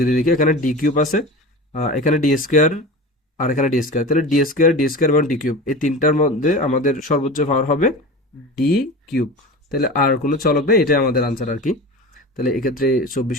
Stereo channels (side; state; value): both; normal; correlation 0.31